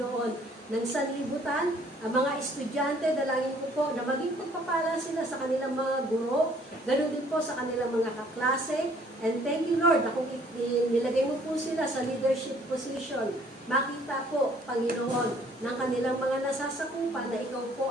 ng sanlibutan. Ang mga estudyante, dalangin ko po na maging pagpapala sila sa kanilang mga guro. Ganoon din po po sa kanilang mga kaklase. And thank you, Lord, na kung nilagay mo po sila sa leadership position, makita po, Panginoon, ng kanilang mga nasasakupan na ikaw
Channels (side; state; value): both; normal; correlation 0.59